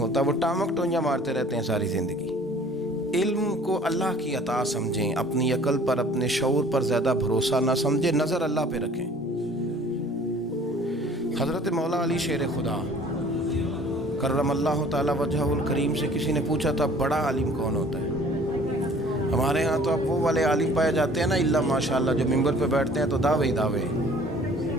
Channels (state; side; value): normal; both; correlation 0.52